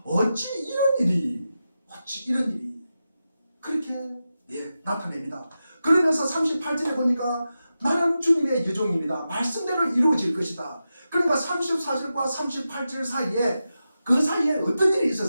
어찌 이런 일이 그렇게 나타냅니다. 그러면서 38절에 보니까 나는 주님의 여종입니다. 말씀대로 이루어질 것이다. 그러니까 34절과 38절 사이에 그 사이에 어떤 일이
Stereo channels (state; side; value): inverted; both; correlation -0.91